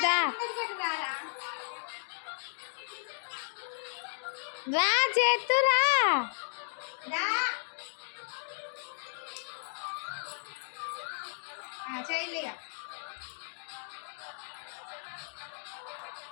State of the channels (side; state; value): right; silent; digital silence